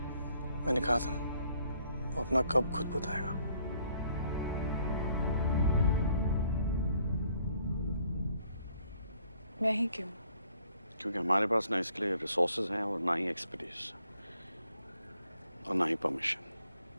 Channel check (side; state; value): both; inverted; correlation -0.66